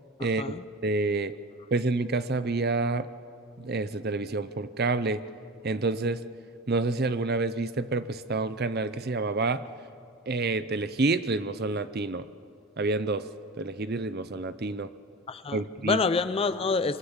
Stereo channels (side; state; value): both; normal; correlation 0.30